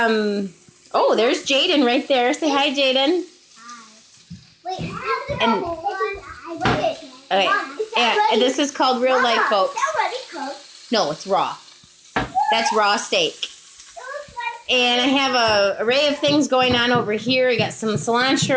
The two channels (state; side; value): identical; both; correlation 1.00